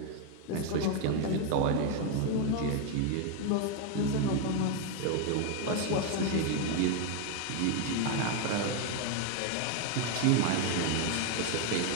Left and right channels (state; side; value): different; both; correlation 0.01